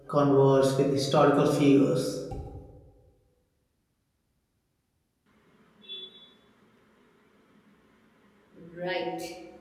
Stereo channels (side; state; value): both; identical; correlation 1.00